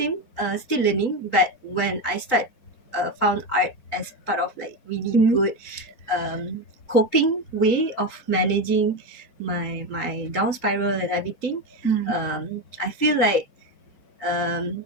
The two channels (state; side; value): late; right; 3.9 ms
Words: still learning. But when I found art as part of like really good coping way of managing my down spiral and everything. I feel like